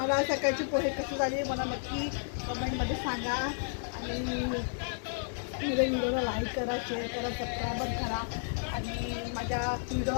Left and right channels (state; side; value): silent; right; digital silence